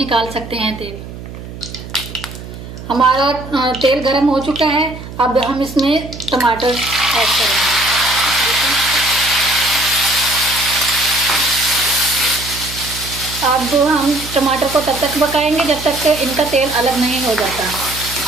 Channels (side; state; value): right; noise; hum, 12 dB below the sound